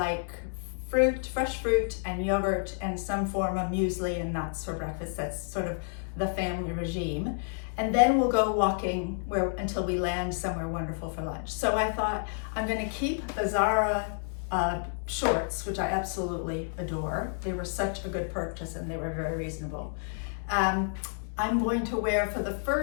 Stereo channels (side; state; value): right; silent; 58 dB below the other